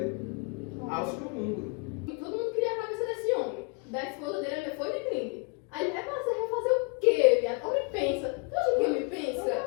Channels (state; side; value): quieter; right; 32.8 dB